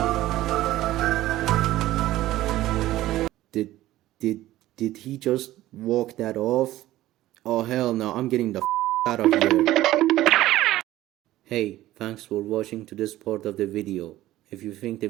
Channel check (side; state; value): left; quieter; 15.4 dB